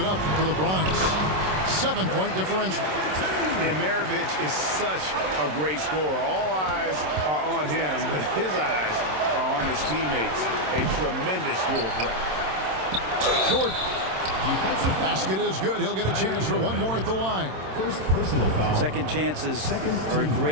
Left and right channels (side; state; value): left; late; 27 ms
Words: up for the Bronx. 7-point differential. And Maravich is such a great scorer. All eyes are on him, but his eyes are on his teammates. A tremendous dual threat. Jordan. Basket is good. He'll get a chance for one more at the line. First personal foul. Second chances are a